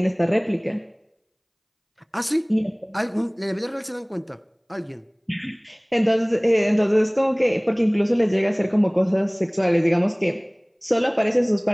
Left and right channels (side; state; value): both; identical; correlation 1.00